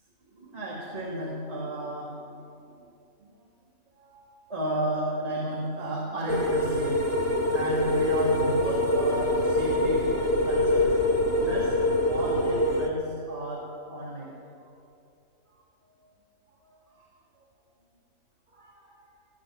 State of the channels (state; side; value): late; right; 2.9 ms